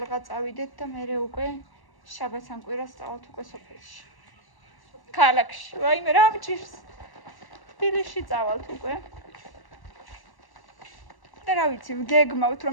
წავიდეთ და მერე უკვე შაბათს ან კვირას წავალთ უკვე სოფელში. ქალაქში, ვაიმე რა მჭირს. თბილისში წავალთ უკვე. და რა ვიცი, გეგმავთ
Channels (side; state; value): right; late; 1.1 ms